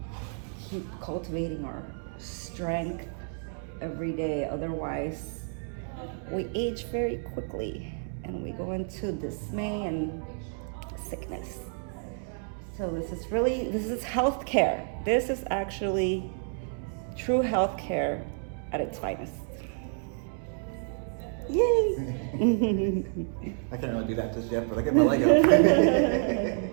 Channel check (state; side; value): silent; left; 58 dB below the other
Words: keep cultivating our strength every day. Otherwise, we age very quickly and we go into dismay and sickness. So this is healthcare. This is actually true healthcare at its finest. Yay! I can't really do that just yet, but I get my leg up.